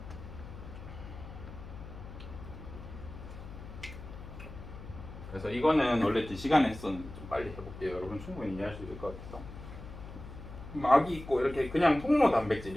그래서 이거는 원래 2시간에 했었는데 좀 빨리 해볼게요. 여러분 충분히 이해할 수 있을 것 같아서. 막이 있고 이렇게 그냥 통로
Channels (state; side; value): noise; left; hum, 13 dB below the sound